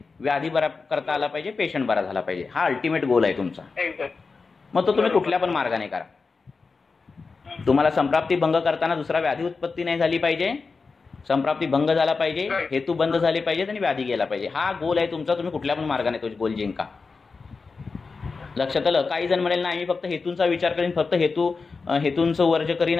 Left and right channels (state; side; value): quieter; right; 4.5 dB